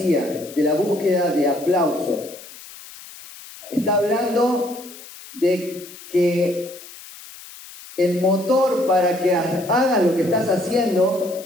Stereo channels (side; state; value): left; noise; hiss, 17 dB below the sound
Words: de la búsqueda de aplausos. Está hablando de que el motor para que hagas lo que estás